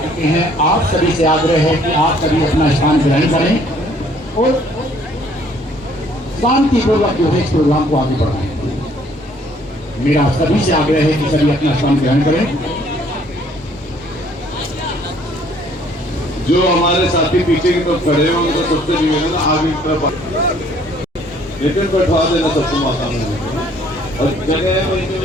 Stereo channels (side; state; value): both; normal; correlation 0.61